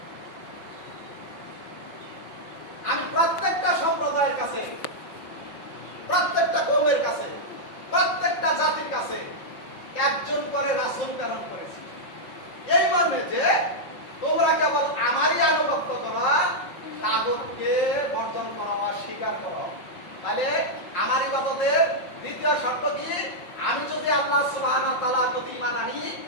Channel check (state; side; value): late; right; 5.6 ms